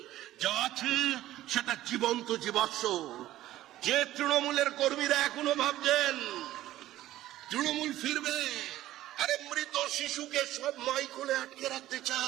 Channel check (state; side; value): quieter; left; 14.6 dB